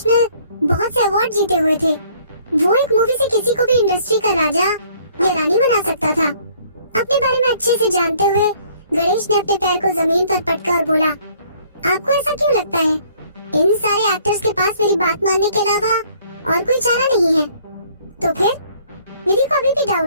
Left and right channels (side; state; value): both; inverted; correlation -0.60